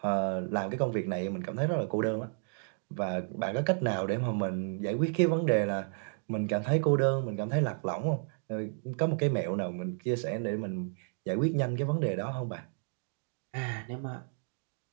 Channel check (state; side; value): silent; left; 56 dB below the other